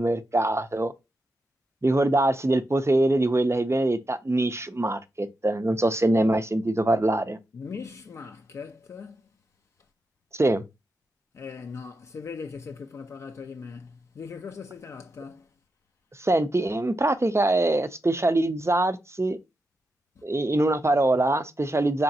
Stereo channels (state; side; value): normal; both; correlation 0.87